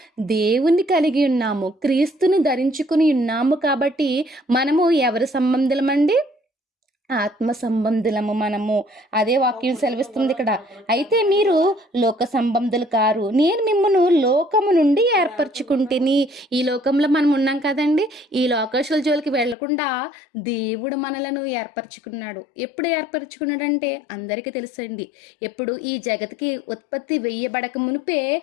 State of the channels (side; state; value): right; drops out; at 19.6 s